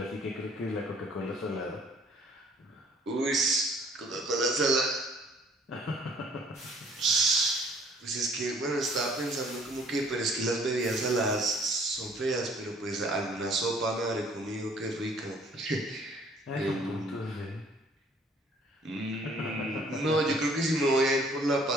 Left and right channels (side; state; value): both; normal; correlation 0.58